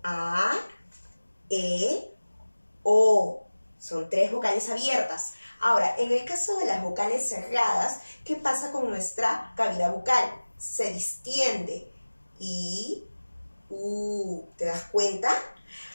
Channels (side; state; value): both; inverted; correlation -1.00